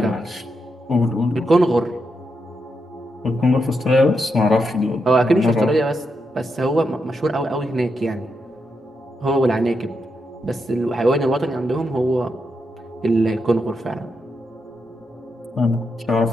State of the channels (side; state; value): both; normal; correlation 0.84